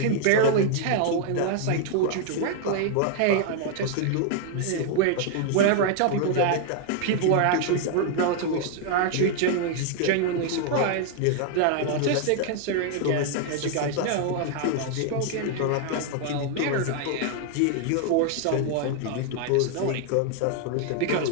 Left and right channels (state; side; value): different; both; correlation 0.00